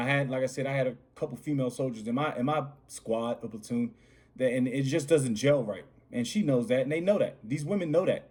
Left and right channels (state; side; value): identical; both; correlation 1.00